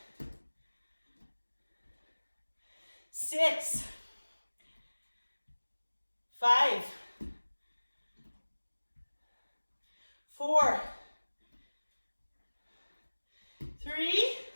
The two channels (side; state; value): both; inverted; correlation -1.00